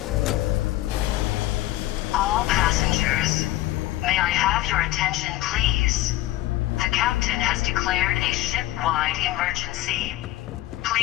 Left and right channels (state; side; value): quieter; right; 15.9 dB